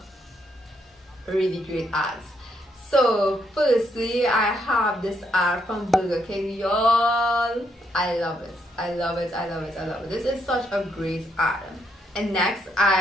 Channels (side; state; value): both; normal; correlation 0.76